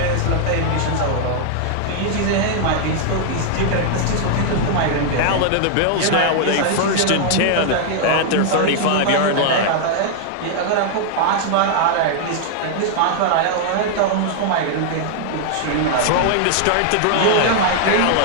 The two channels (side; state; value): both; different; correlation 0.00